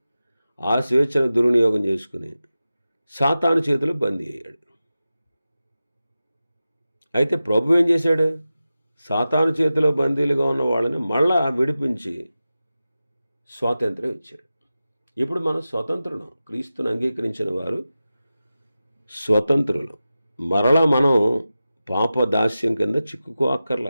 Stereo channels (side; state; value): both; inverted; correlation -0.94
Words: ఆ స్వేచ్ఛను దుర్వినియోగం చేసుకుని సాతాను చేతులు బందీ అయ్యాడు. అయితే ప్రభు ఏం చేశాడు? సాతాను చేతిలో బందీలుగా ఉన్న వాళ్ళని మళ్ళా విడిపించి స్వాతంత్రం ఇచ్చాడు. ఇప్పుడు మనం స్వతంత్రులం. క్రీస్తుని అంగీకరించిన వారు స్వతంత్రులు. మరలా మనం పాప దాస్యం కింద చిక్కుకో